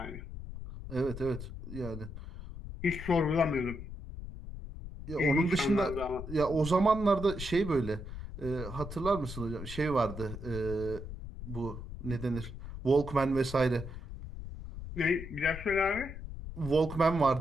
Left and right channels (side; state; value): left; noise; rumble, 10 dB below the sound